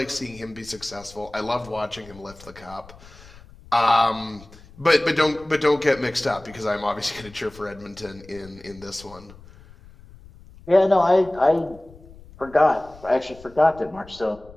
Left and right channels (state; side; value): noise; left; rumble, 21 dB below the sound